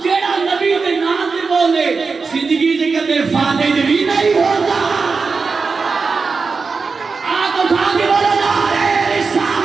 جیڑا نبی دے نام دے بولے زندگی دے کدے فاتح بھی نہیں ہوتا آگ اٹھا کے بولا نعرہ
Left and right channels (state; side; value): quieter; left; 4.6 dB